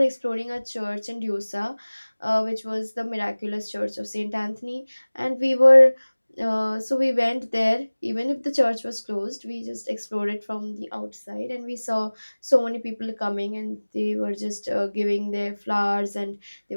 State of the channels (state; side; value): inverted; both; correlation -1.00